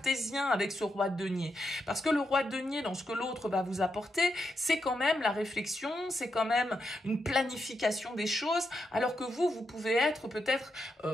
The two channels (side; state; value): both; normal; correlation 0.83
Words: avec ce roi de denier. Parce que le roi de denier, dans ce que l'autre va vous apporter, c'est quand même la réflexion, c'est quand même une planification des choses, alors que vous pouvez être peut-être